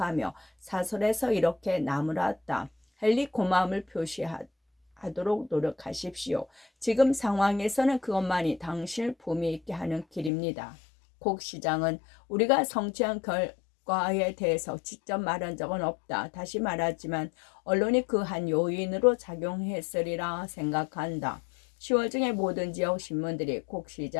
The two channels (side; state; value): right; drops out; at 10.3 s